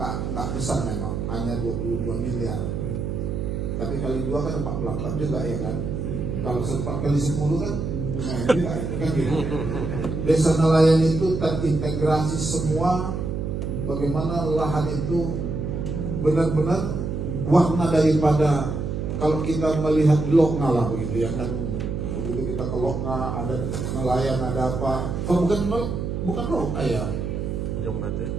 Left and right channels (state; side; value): noise; right; hum, 3 dB below the sound